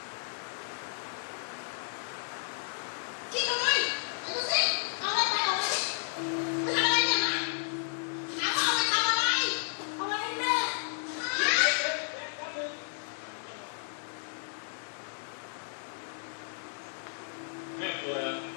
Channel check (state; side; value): silent; right; digital silence